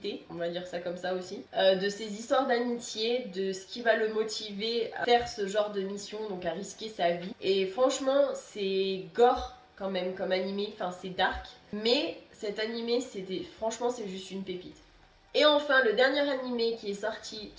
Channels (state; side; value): identical; both; correlation 1.00